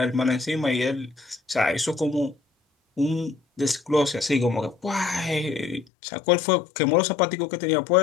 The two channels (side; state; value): right; drops out; at 5.9 s